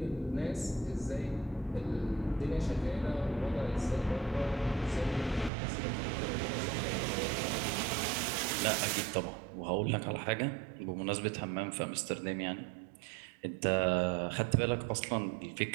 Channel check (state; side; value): drops out; left; at 5.5 s